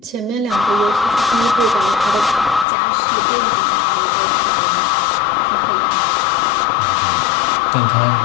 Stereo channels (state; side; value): drops out; right; at 2.7 s